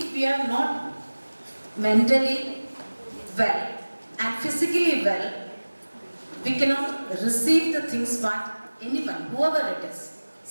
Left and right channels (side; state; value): both; inverted; correlation -1.00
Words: we are not mentally well and physically well, we cannot receive the things what anyone, whoever it is,